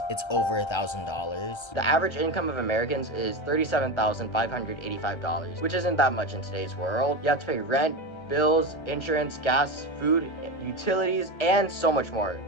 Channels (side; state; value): right; late; 1.3 ms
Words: it's over $1,000. The average income of Americans is $37,585, which isn't that much in today's world. You have to pay rent, bills, insurance, gas, food, utilities, and so much more,